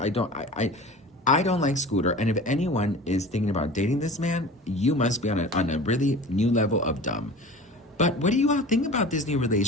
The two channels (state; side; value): normal; both; correlation 0.38